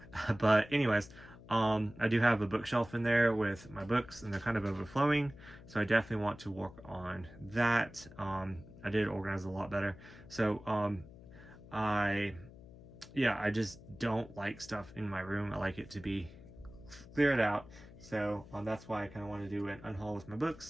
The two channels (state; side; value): noise; left; hum, 18 dB below the sound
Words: But anyways, I do have a bookshelf in there with my books, and they're kind of overflowing. So I definitely want to work on that. I did organize a lot better. So I just don't like stuff in my room. I like it to be cleared out. So that's why I kind of want to do an unhaul with my